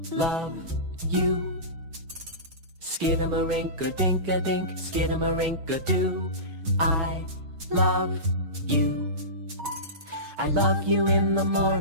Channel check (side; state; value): left; late; 6.4 ms